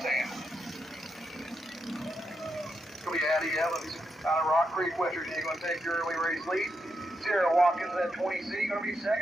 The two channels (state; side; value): normal; both; correlation 0.83